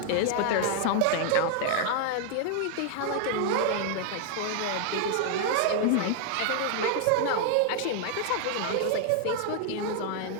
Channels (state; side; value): different; both; correlation 0.00